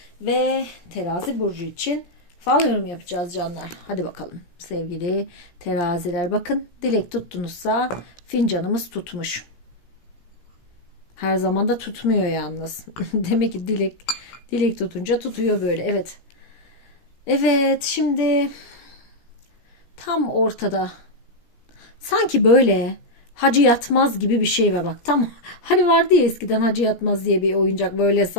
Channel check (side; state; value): right; late; 17 ms